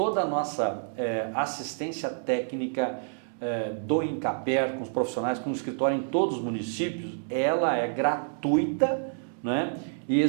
a nossa assistência técnica do Incaper, com os profissionais, com o escritório em todos os municípios, ela é gratuita e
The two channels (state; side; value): silent; left; digital silence